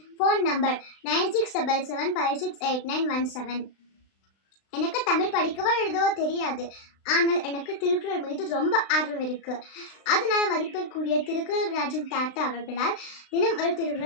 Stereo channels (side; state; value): right; late; 36 ms